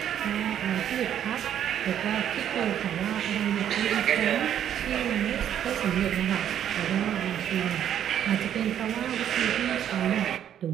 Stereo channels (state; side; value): quieter; left; 10.0 dB